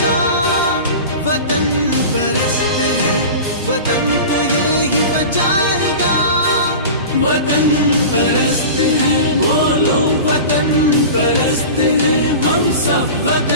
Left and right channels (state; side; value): inverted; both; correlation -0.33